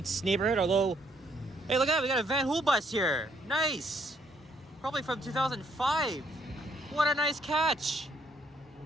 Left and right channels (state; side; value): normal; both; correlation 0.69